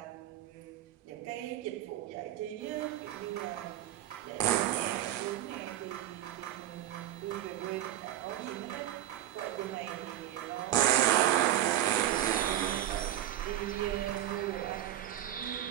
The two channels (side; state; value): left; quieter; 12.5 dB